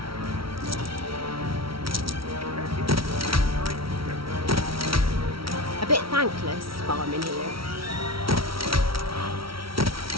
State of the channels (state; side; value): late; left; 0.75 ms